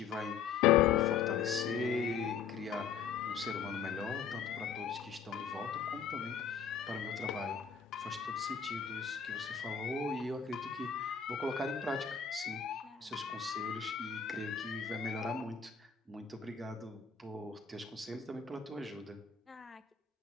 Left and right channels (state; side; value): quieter; right; 6.8 dB